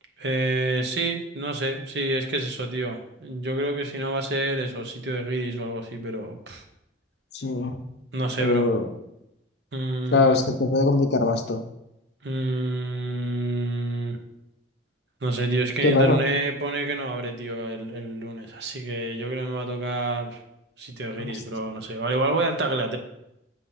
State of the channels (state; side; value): normal; both; correlation 0.27